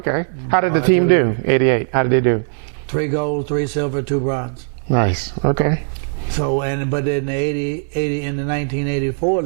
How did the team do? '88. How did they do? 3 gold, 3 silver, 2 bronze. Nice. Okay. So but in the 1984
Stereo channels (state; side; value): silent; left; 67 dB below the other